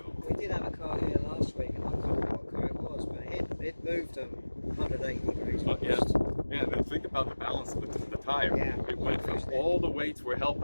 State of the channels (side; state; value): both; inverted; correlation -1.00